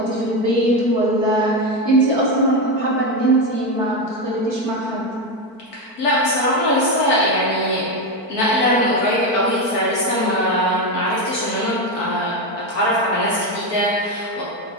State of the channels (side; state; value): right; late; 4.5 ms